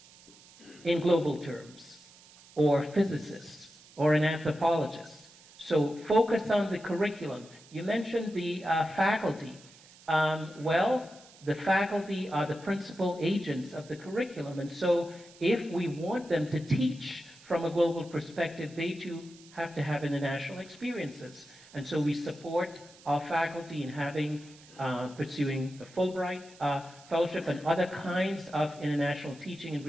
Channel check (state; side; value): noise; right; hiss, 23 dB below the sound